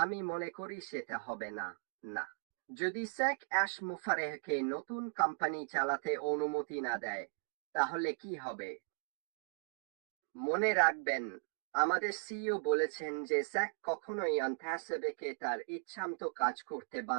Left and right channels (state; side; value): silent; left; digital silence